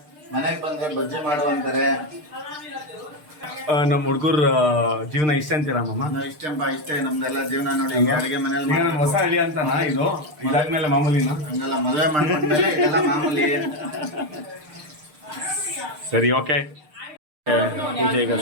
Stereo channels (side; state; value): left; late; 6.6 ms